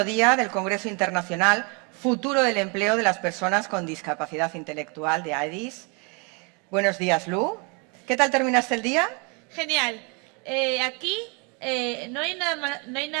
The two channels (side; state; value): left; quieter; 33.1 dB